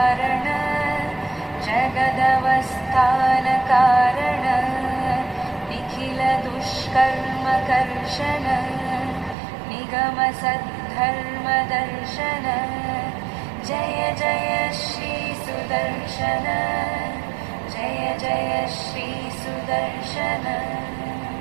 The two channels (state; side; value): drops out; left; at 9.3 s